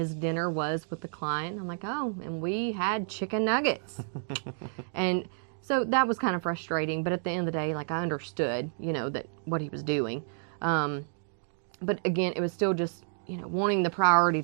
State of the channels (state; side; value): silent; left; digital silence